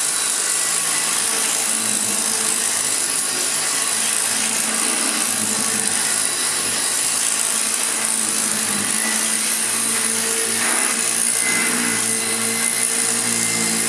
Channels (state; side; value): identical; both; correlation 1.00